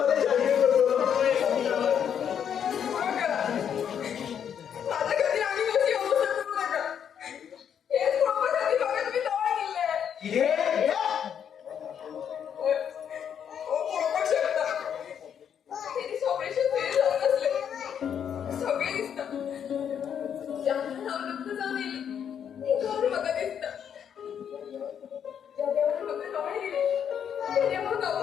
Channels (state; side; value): quieter; right; 8.4 dB